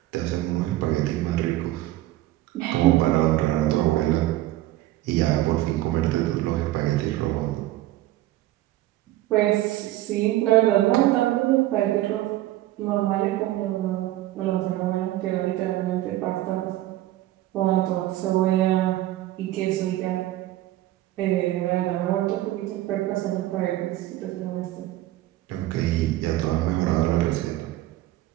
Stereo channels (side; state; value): left; quieter; 15.5 dB